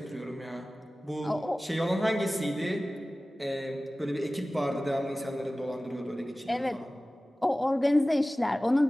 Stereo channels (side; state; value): both; normal; correlation 0.97